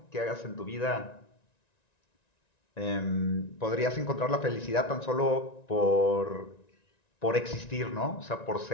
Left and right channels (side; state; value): right; late; 1.9 ms